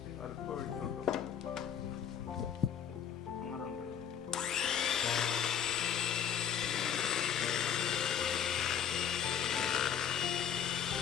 അല്പം ഒഴിക്കുള്ളൂ. അങ്ങനെ ഉണ്ട്.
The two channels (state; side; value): quieter; right; 8.6 dB